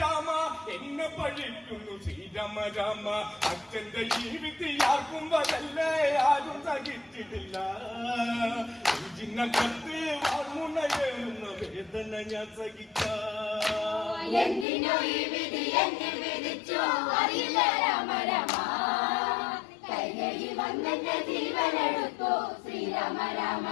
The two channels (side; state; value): right; drops out; at 14.7 s